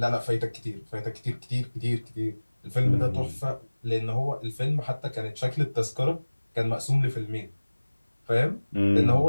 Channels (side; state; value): both; inverted; correlation -1.00